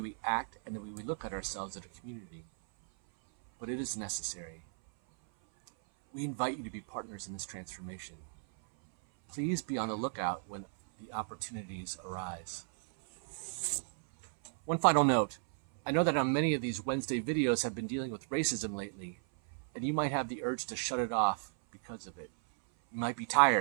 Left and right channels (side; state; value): left; silent; 54 dB below the other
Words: we act, and the way we look at ourselves as a community. But it is necessary. We invite you to be partners in this transformation. Please be on the lookout when the opportunities arise. One final note. I know that on many of these Wednesday videos have been dealing with racism lately, and you might have the urge to shut it off because of it. You might be